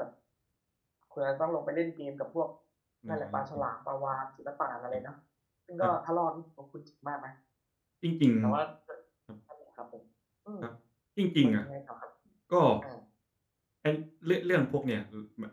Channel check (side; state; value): both; identical; correlation 1.00